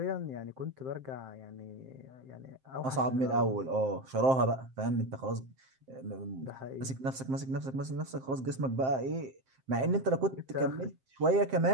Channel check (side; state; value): left; late; 7.6 ms